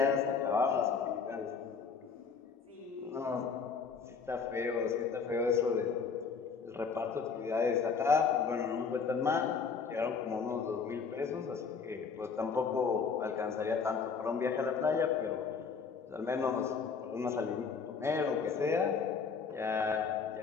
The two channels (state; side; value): quieter; right; 5.6 dB